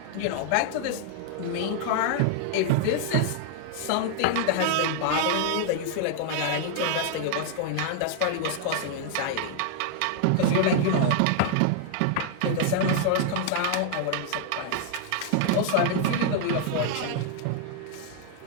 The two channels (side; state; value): both; different; correlation 0.00